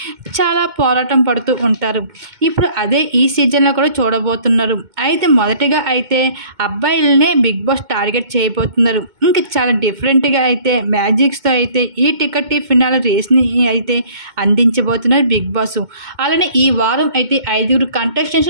చాలా పోరాటం పడుతూ ఉంటారు. ఇప్పుడు అదే ఈ సీజన్లో కూడా చూడబోతున్నారు. అయితే మొదటిగా అయితే అబ్బాయిలనే బిగ్ బాస్ టార్గెట్ చేయబోతున్నారు. ఇంకా చాలా డిఫరెంట్గా అయితే మ్యాజిక్స్తో అయితే ఈ టికెట్ ఫినాల్ రేస్ని అయితే అందించబోతున్నారు బిగ్ బాస్. అలానే ఈ వారం అయితే 5 కంటెస్టెంట్స్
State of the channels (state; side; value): late; left; 2.2 ms